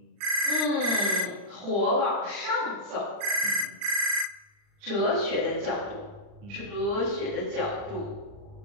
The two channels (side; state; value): left; late; 39 ms